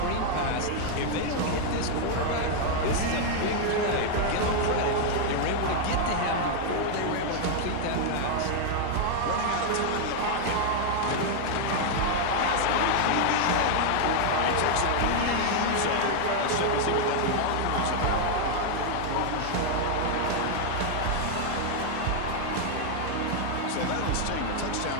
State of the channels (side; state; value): both; different; correlation 0.00